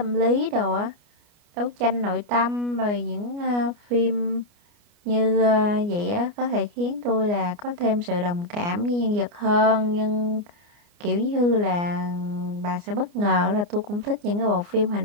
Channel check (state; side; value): late; left; 29 ms